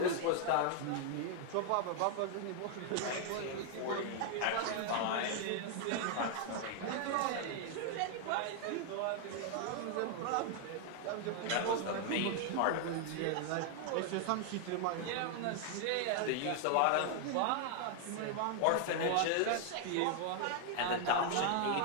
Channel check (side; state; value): both; different; correlation 0.00